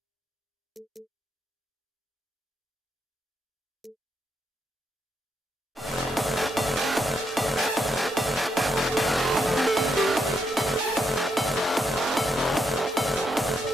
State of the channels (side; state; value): both; normal; correlation 0.79